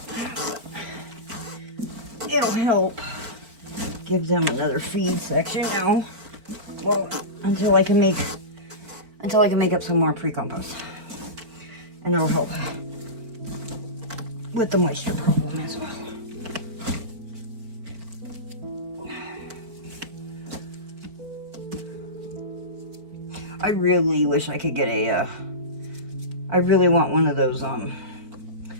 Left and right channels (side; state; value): left; late; 4.4 ms